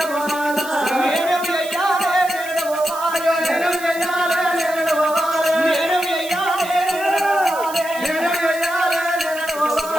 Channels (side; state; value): right; noise; hiss, 14 dB below the sound